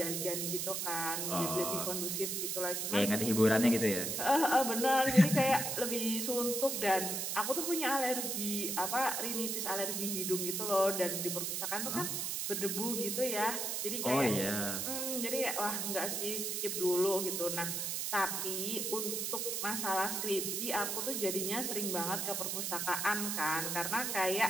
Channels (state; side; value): noise; right; hiss, 1 dB below the sound